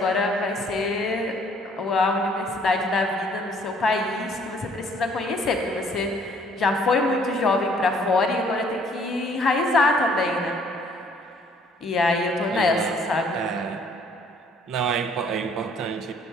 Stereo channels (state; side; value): normal; both; correlation 0.60